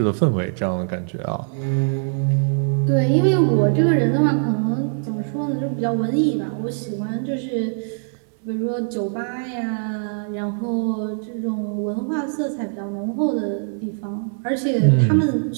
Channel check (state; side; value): silent; left; 64 dB below the other